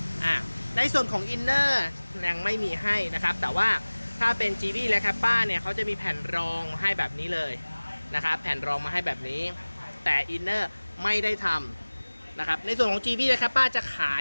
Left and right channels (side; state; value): both; inverted; correlation -1.00